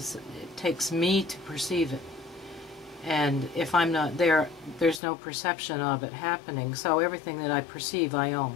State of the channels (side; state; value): right; drops out; at 5.0 s